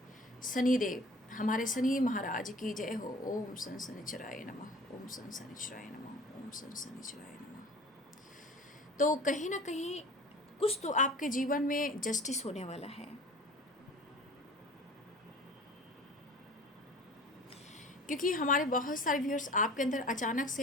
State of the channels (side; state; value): both; normal; correlation 0.44